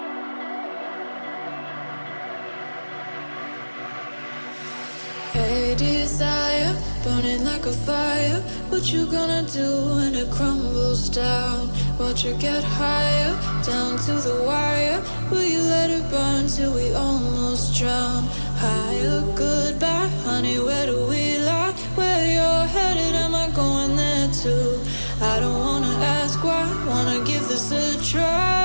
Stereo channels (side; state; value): both; inverted; correlation -1.00